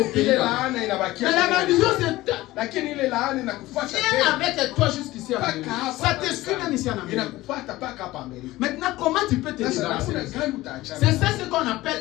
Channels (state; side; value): quieter; right; 17.7 dB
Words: pays. Mais la malédiction, c'est viens avec toi jusqu'ici en Amérique. Ça te suit même ici en Amérique. Maintenant, comment tu peux te débarrasser? C'est ça ce qu'on appelle